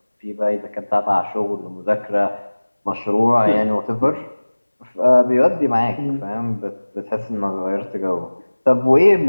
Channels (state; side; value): inverted; both; correlation -1.00